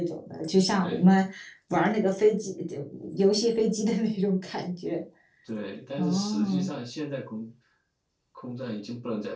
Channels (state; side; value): identical; both; correlation 1.00